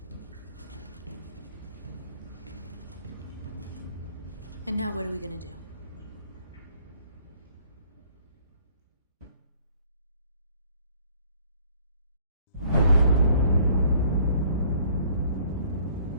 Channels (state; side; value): inverted; both; correlation -0.59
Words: And now what are we gonna do?